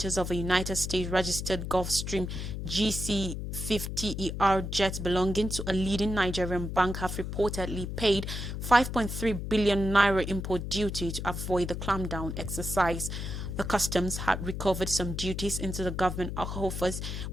of a United States registered Gulfstream GC-50ER jet belonging to a leading Nigerian bank have reportedly paid 5.3 billion naira import duty to avoid the clampdown exercise. The customs had recovered some duties into the government coffers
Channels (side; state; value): left; noise; hum, 5 dB below the sound